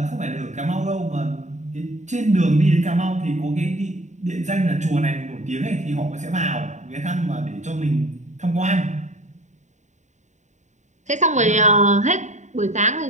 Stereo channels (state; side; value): late; left; 0.34 ms